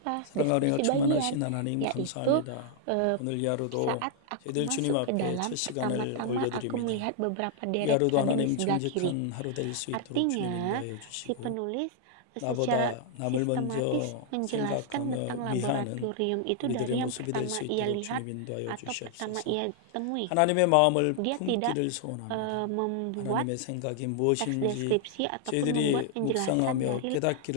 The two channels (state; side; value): different; both; correlation 0.00